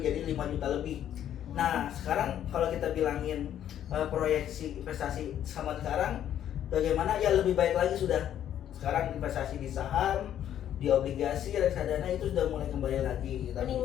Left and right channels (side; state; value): right; quieter; 10.6 dB